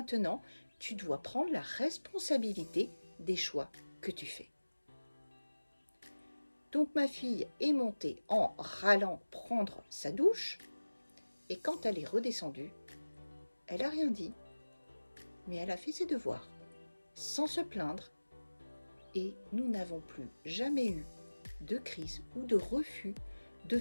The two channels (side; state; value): both; inverted; correlation -1.00